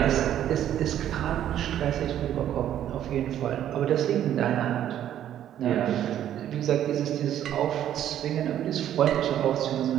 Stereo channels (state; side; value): quieter; left; 11.0 dB